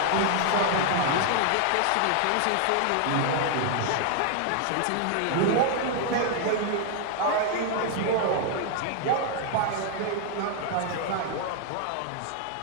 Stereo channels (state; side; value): different; both; correlation 0.00